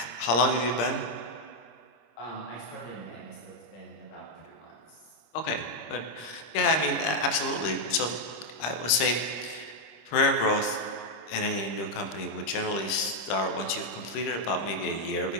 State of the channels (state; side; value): late; right; 26 ms